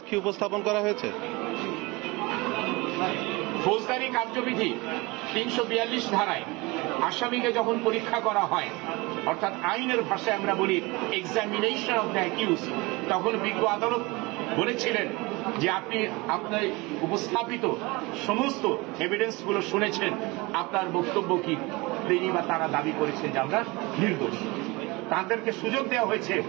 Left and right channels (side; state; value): left; quieter; 24.2 dB